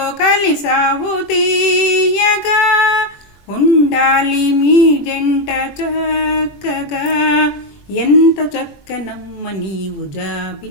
కలిసావు తీయగా, ఉండాలి మీ జంట చక్కగా. ఎంత చక్కనమ్మ నీవు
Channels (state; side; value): late; right; 21 ms